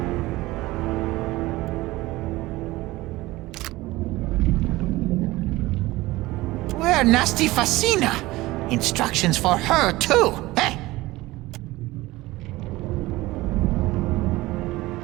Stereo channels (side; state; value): left; quieter; 19.1 dB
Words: Where Nasty Facina? Instructions for her, too, eh?